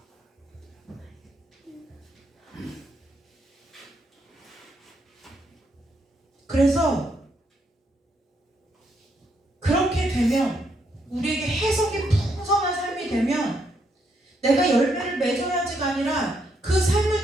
그래서 그렇게 되면 열매를 맺어야지가 아니라 그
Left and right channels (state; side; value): normal; both; correlation 0.76